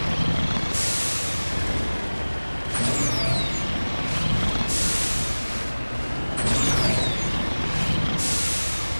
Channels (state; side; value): inverted; both; correlation -1.00